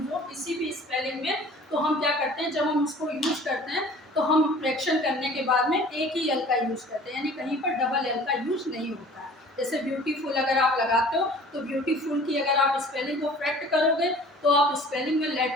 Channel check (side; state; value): both; normal; correlation 0.48